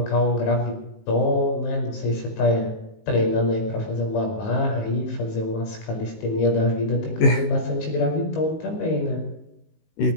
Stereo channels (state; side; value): late; right; 19 ms